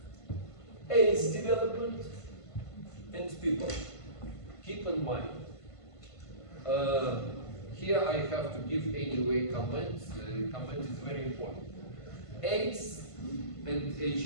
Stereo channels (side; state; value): right; late; 1.5 ms